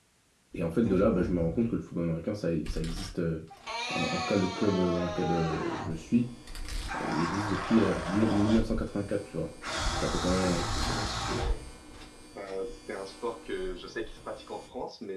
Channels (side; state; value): both; identical; correlation 1.00